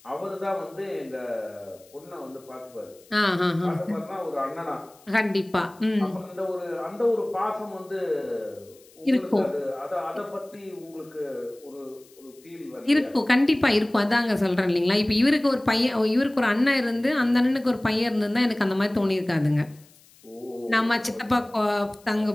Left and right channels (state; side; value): noise; left; hiss, 27 dB below the sound